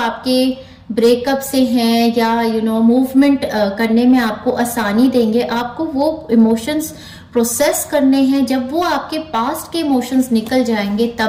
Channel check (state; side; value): identical; both; correlation 1.00